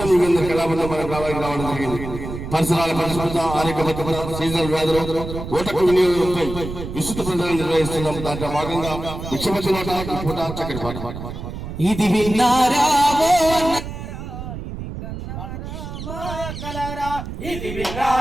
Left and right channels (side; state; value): right; noise; rumble, 8 dB below the sound